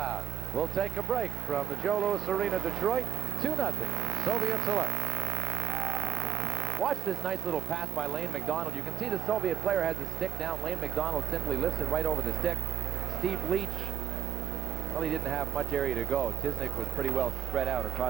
We'll take a break from the Joe Louis Arena, Detroit. 2-0, Soviet select. Watch this nice little pass by Lane McDonald. You can see the Soviet player has his stick down. Lane McDonald simply lifts it right over the stick. Steve Leach, well, he didn't have much area to go. Tisnik was pretty well spread out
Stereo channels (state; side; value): quieter; left; 10.4 dB